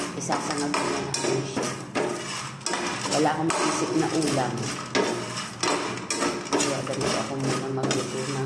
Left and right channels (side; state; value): both; identical; correlation 1.00